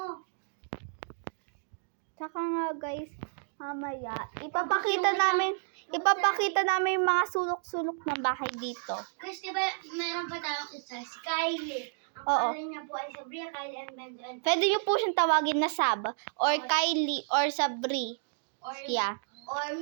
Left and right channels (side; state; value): left; silent; digital silence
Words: Tsaka nga guys, mamaya, ipapakita namin yung mga sulok-sulok ng bahay dito. Kasi diba, meron pa tayong isa, si Kylie. Ang Oo. pangalan niya po ay Sabria Kylie and Benjamin. Pwede nyo po siyang tawagin na Sab, or Kylie, or Sabri. Or, Yeah. or